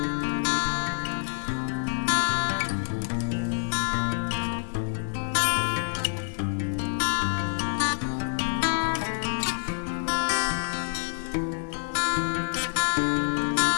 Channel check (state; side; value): silent; right; 60 dB below the other